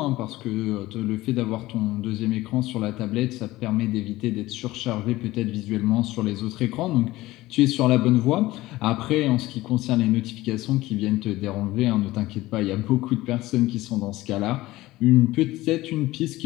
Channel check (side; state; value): right; quieter; 17.9 dB